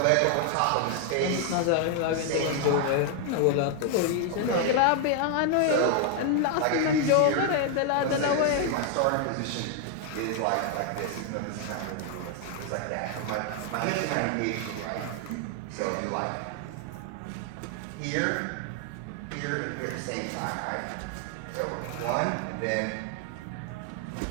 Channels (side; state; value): both; different; correlation 0.00